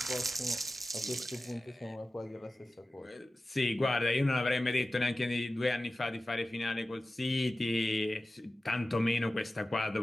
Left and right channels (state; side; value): normal; both; correlation 0.95